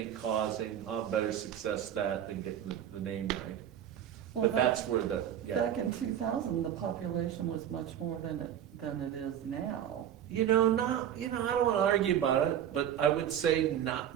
causing, better success that than getting the name right. Well, But that's where back in 2000, the population was much more than it is now. I don't want to argue about it, but I would say not,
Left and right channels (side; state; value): left; quieter; 10.1 dB